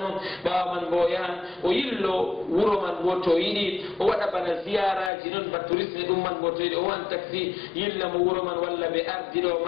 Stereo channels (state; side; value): drops out; right; at 5.1 s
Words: ɓawa man bo yahan o yillo wuro man bo to yiɗi o waɗa bana ziyaraji noon ba touriste ɗum man bo to yiɗi o wan taxi yillamo wuro man walla ɓe ardiɗo